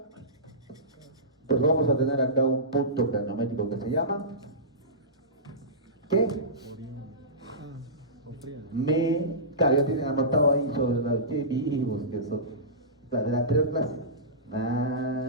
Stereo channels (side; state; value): both; normal; correlation -0.20